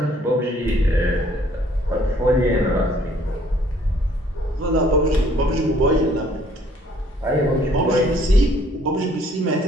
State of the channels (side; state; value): both; normal; correlation 0.61